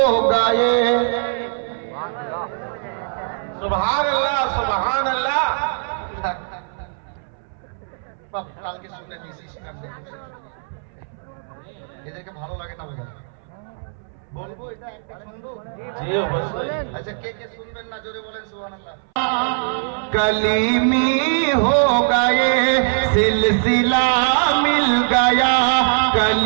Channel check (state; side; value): silent; left; 60 dB below the other